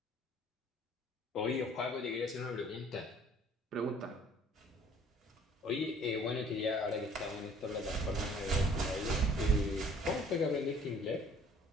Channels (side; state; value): both; normal; correlation 0.55